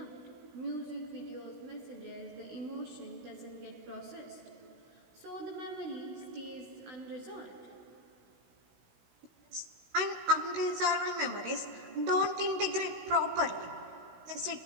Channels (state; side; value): late; left; 16 ms